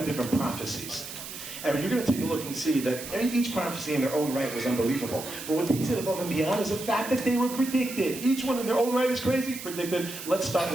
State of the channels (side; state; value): right; noise; hiss, 10 dB below the sound